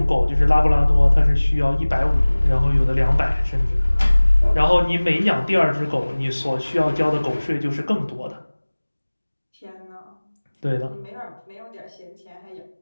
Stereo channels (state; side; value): inverted; both; correlation -1.00